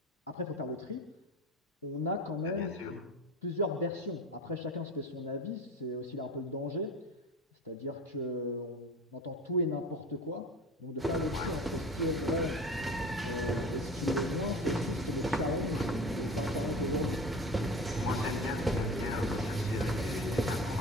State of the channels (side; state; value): both; normal; correlation 0.34